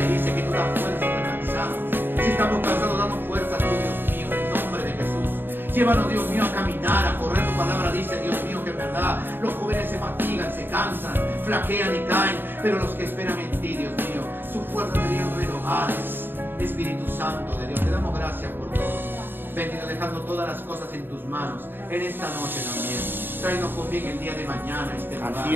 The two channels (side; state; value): left; late; 0.096 ms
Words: dice que tú das fuerzas al cansado. Si estamos cansados, danos fuerzas tú, Dios mío, en el nombre de Jesús. Llévanos, Dios mío, a caminar, a correr. Tu palabra dice, Dios mío, que en verdad los jóvenes se fatigan, se cansan, flaquean y caen, pero los que esperan en ti, Dios mío, sus fuerzas serían renovadas. Espíritu Santo de Dios, te damos gracias por todo. Bendito, dejando todas las cosas en tus manos en esta noche también. Tráenos con bien el día de mañana este lugar,